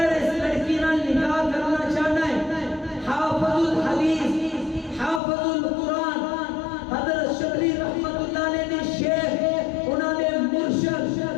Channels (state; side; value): drops out; right; at 5.2 s